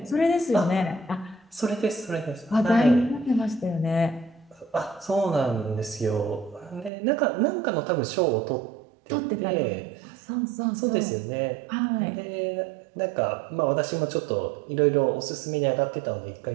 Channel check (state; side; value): drops out; left; at 6.9 s